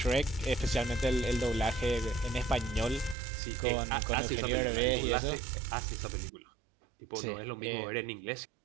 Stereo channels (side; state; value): left; drops out; at 3.2 s